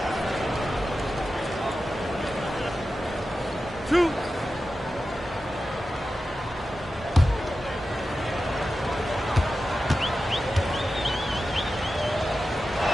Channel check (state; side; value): normal; both; correlation 0.92